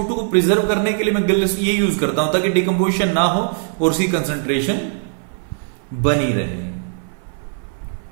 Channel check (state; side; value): silent; left; 57 dB below the other